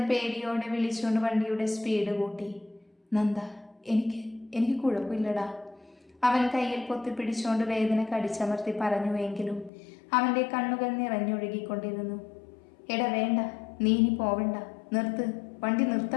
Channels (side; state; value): right; drops out; at 9.7 s